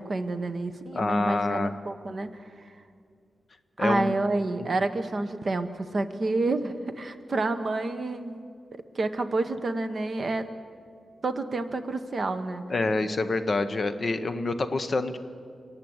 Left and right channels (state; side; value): normal; both; correlation 0.90